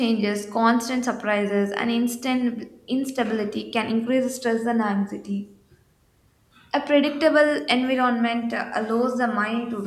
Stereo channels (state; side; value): identical; both; correlation 1.00